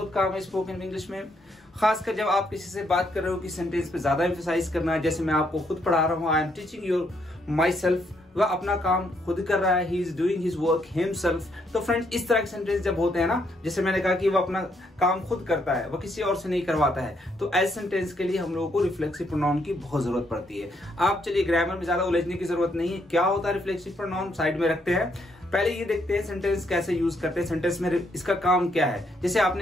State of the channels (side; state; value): both; normal; correlation 0.74